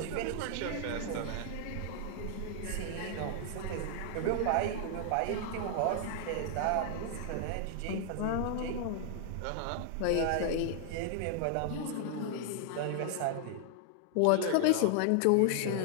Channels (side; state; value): both; different; correlation 0.00